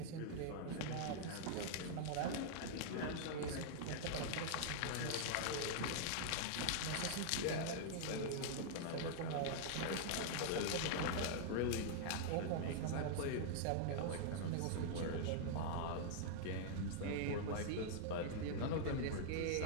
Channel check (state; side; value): different; both; correlation -0.01